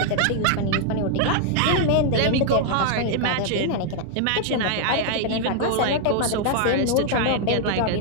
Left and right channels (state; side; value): different; both; correlation 0.00